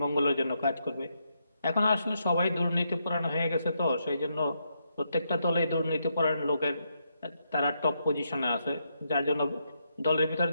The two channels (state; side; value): inverted; both; correlation -0.80